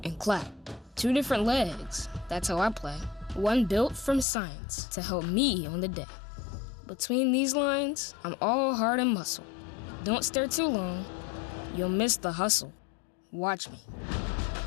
and clap. 2 different legs, that's how I play. One built from science to help me on the day. Between these lines, I'm all heart and muscle. Don't stare too long, you'll miss the hustle. Watch me.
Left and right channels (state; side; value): drops out; right; at 4.2 s